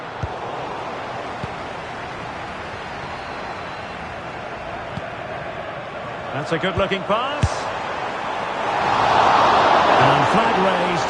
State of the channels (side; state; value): both; identical; correlation 1.00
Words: That's a good-looking pass. And flag raised,